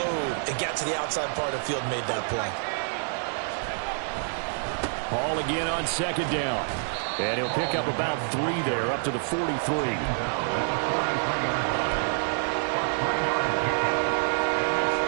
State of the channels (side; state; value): left; silent; digital silence